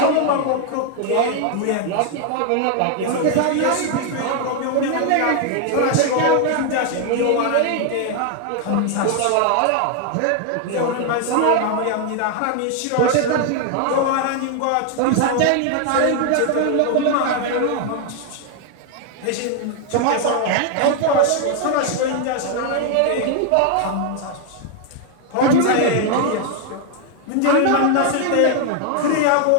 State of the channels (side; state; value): both; different; correlation 0.00